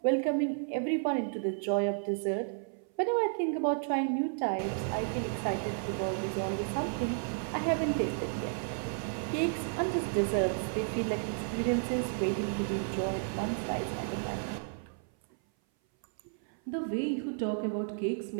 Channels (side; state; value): left; silent; 56 dB below the other